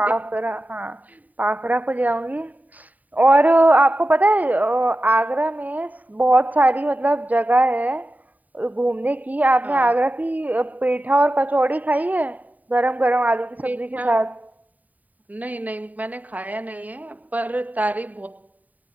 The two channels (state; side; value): late; left; 0.076 ms